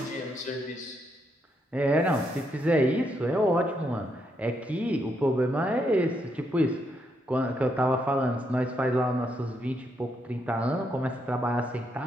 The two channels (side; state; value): both; normal; correlation 0.78